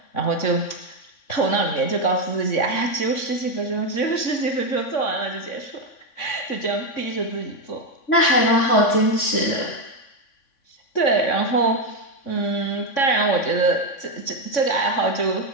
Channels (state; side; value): late; right; 3.6 ms